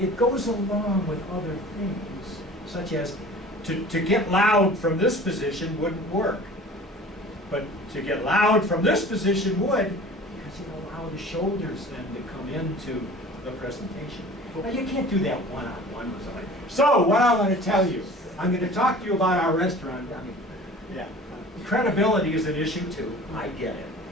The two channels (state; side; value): normal; both; correlation 0.43